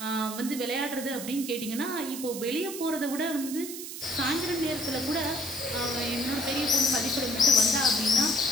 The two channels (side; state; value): right; noise; hiss, 9 dB below the sound